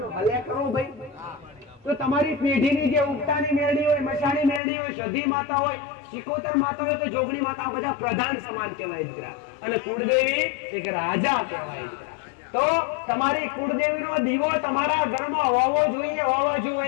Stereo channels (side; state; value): right; drops out; at 4.6 s